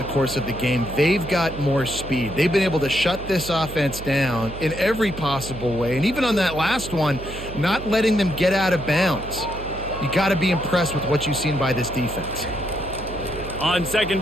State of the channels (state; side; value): noise; right; hum, 11 dB below the sound